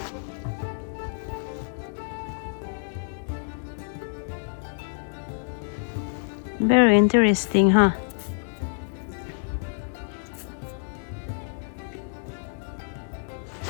Very interesting, huh?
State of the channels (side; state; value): right; silent; digital silence